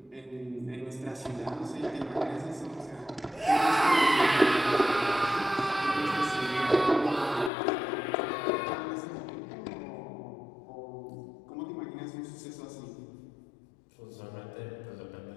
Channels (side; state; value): right; drops out; at 7.5 s